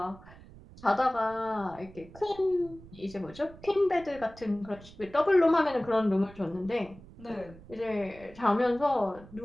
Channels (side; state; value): right; noise; rumble, 19 dB below the sound